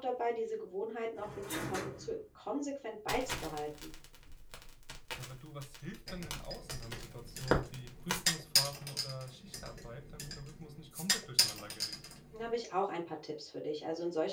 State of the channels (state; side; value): identical; both; correlation 1.00